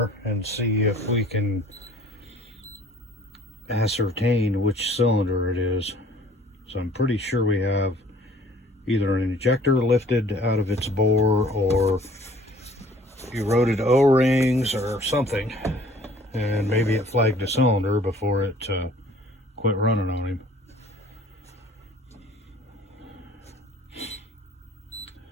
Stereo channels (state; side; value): normal; both; correlation 0.53